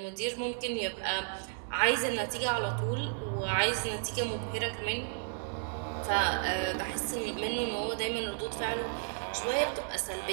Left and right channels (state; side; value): silent; left; digital silence